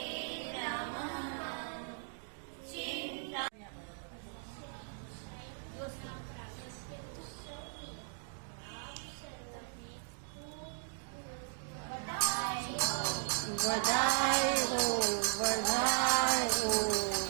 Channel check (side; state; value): left; silent; digital silence